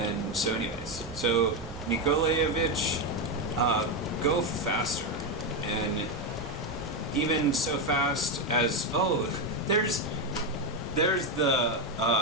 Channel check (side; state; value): both; normal; correlation 0.08